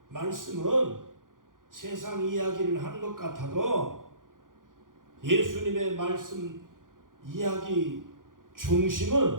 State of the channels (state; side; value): late; left; 0.89 ms